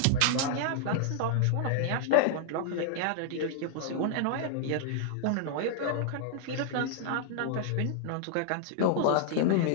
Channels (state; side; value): different; both; correlation -0.01